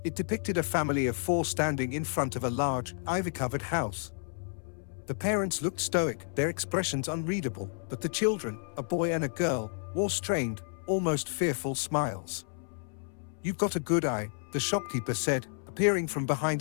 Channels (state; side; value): silent; right; 57 dB below the other